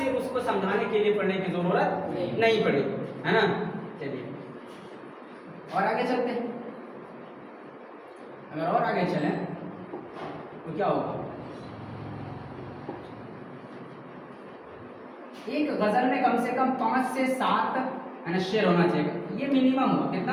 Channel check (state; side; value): identical; both; correlation 1.00